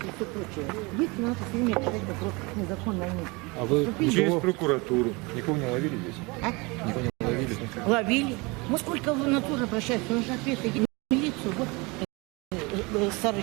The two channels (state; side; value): quieter; left; 26.4 dB